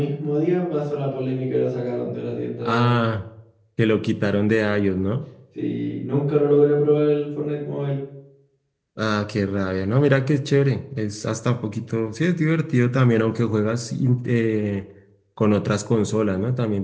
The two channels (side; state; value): both; identical; correlation 1.00